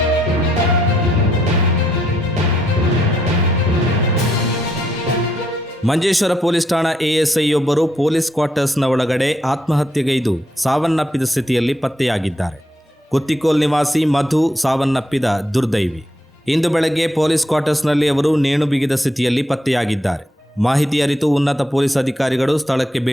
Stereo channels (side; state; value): both; normal; correlation 0.76